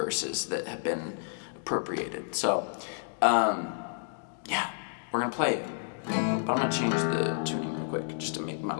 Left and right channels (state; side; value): silent; right; digital silence